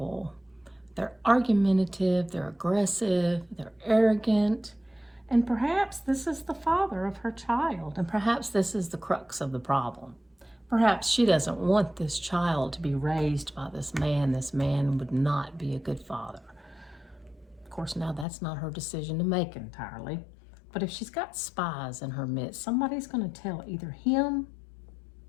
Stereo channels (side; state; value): right; drops out; at 18.2 s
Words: They're argumentative, they're aggressive, they're arrogant, and perhaps this is the father of her child, and perhaps this is the crux of the problem. Perhaps she doesn't want this child to be raised by this man. This man would not be a good father. Of course, now that's not her decision to make entirely, but if she's got spies in her midst, somebody's going to tell either him